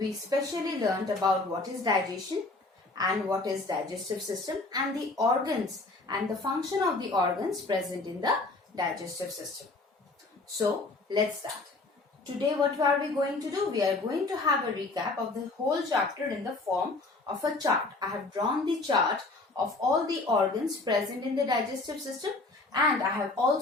specially learned about what is digestion and what is digestive system and the organs and the function of the organs present in the digestive system. So let's start. Today what are we going to do? We are going to have a recap of the whole chapter in the form of a chart. I have drawn the chart of all the organs present in the digestive system, and I have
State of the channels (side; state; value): right; quieter; 3.3 dB